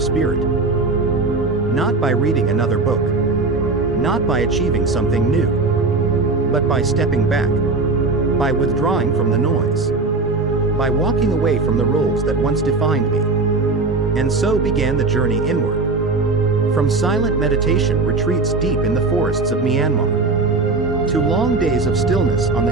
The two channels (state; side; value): quieter; left; 3.6 dB